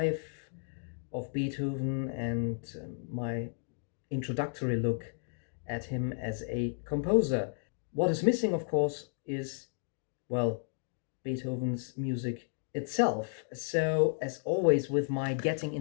of Beethoven and my introductory look at him as a composer. What is missing, of course, is, well, Beethoven's music itself. So, as always, with my getting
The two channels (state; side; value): silent; right; digital silence